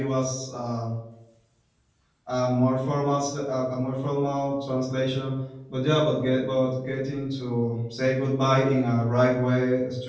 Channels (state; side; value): identical; both; correlation 1.00